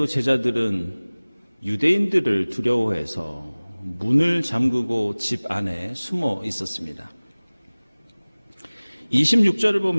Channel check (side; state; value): both; inverted; correlation -1.00